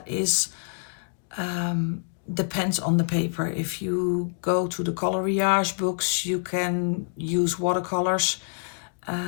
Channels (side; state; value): right; silent; digital silence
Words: is depends on the paper. If you go to the coloriage books, you can use watercolors.